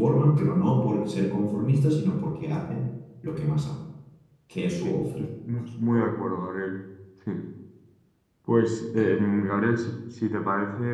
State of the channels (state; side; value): identical; both; correlation 1.00